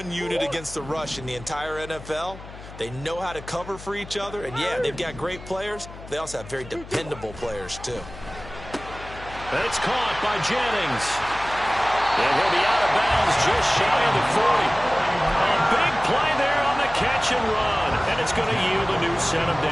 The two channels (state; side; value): noise; left; hum, 15 dB below the sound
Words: unit against the rush in the entire NFL. They know how to cover for each other, and yeah, they've got great players. They also have very dependable players, too. It's caught by Jennings. And he'll be out of bounds just shy of the 40. A big play there on the catch and run, and it's going to yield a new set of